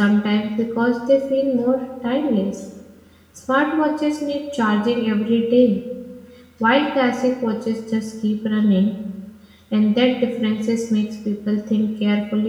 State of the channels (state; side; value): identical; both; correlation 1.00